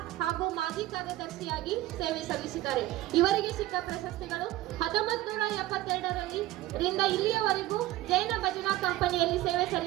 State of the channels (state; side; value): quieter; left; 16.2 dB